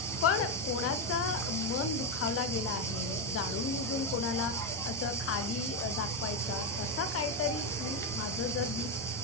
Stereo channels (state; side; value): normal; both; correlation 0.07